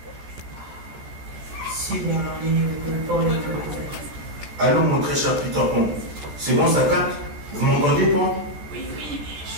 Alors mon très cher Peter Pan, c'est bon ça capte? Vous m'entendez Pan? Oui, mais je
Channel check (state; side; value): late; left; 14 ms